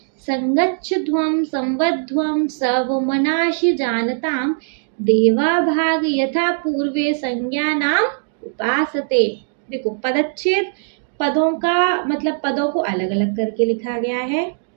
संगच्छध्वं संवध्वं सवमनासि जानतां देवाभाग यथा पूर्वे संज्ञानाम उपासते। देखो पदच्छेद, पदों का मतलब पदों को अलग अलग करके लिखा गया है।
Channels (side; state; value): left; silent; digital silence